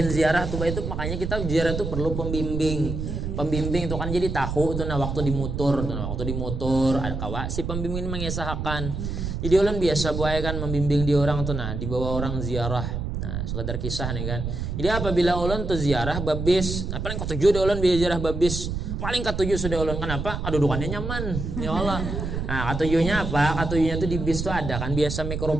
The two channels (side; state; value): right; noise; rumble, 4 dB below the sound